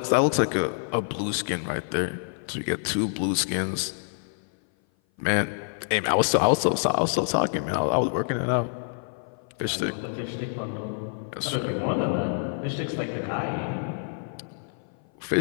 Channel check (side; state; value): right; silent; 56 dB below the other